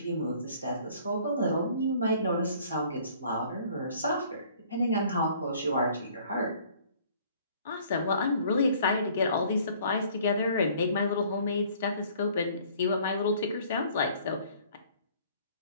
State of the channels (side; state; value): both; inverted; correlation -0.56